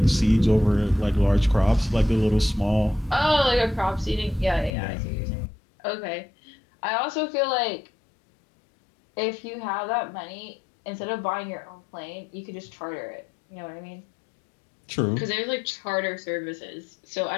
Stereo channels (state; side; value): drops out; right; at 4.7 s